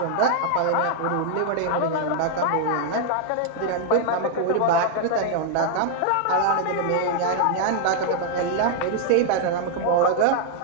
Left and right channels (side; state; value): both; different; correlation 0.00